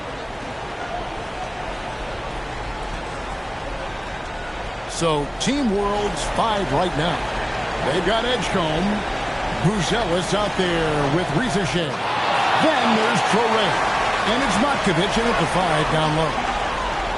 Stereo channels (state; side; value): identical; both; correlation 1.00